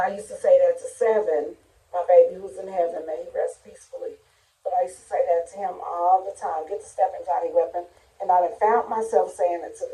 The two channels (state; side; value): identical; both; correlation 1.00